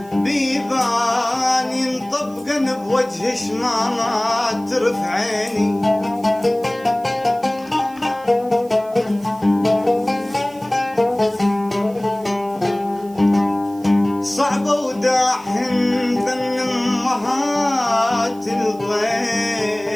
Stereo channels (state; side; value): noise; right; hiss, 25 dB below the sound